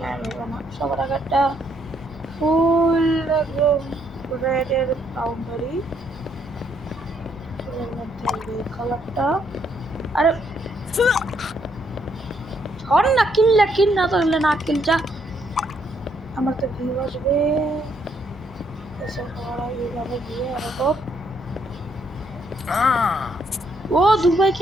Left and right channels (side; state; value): both; normal; correlation 0.72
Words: সবার আগে একটা ফুল একদম রেডের বাউন্ডারি এর মধ্যে এই কালারটা আরে হর না কিল না তাহলে না কিল যা আমার তো ভিউ আসবে এসব সবার আগে এইভাবে দিয়ে আর তো ও দুবাই